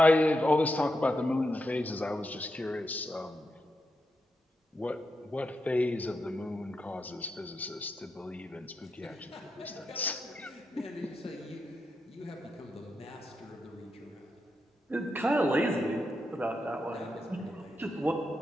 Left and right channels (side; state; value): both; normal; correlation 0.85